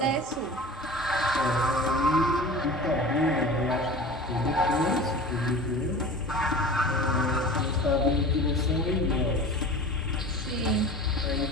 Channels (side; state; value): both; normal; correlation 0.37